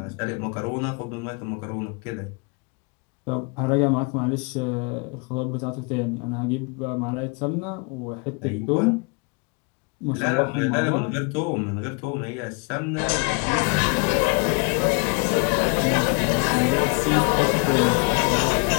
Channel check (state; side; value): quieter; right; 33.7 dB